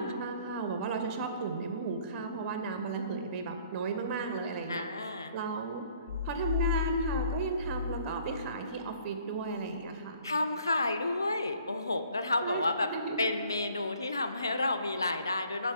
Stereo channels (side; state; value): both; inverted; correlation -0.58